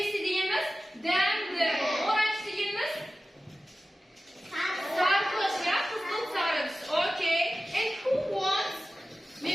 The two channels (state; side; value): normal; both; correlation 0.95